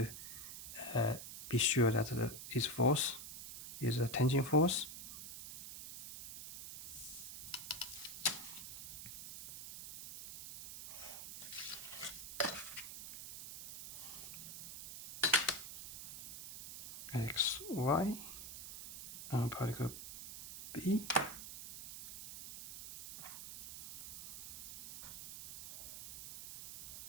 be sure that this force is a tension force. X, Y, on particle B.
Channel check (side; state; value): right; noise; hiss, 10 dB below the sound